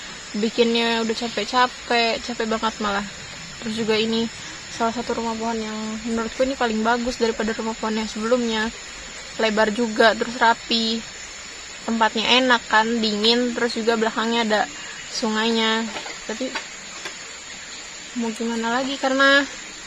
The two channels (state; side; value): identical; both; correlation 1.00